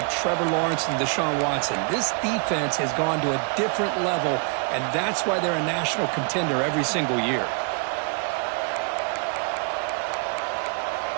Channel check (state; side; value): quieter; left; 38.7 dB